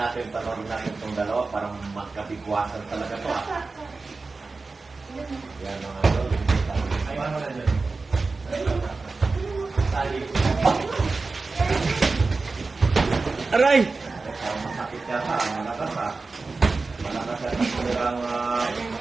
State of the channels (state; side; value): quieter; left; 3.9 dB